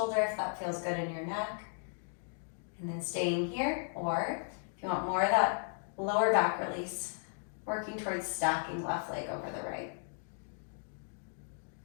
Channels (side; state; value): right; silent; digital silence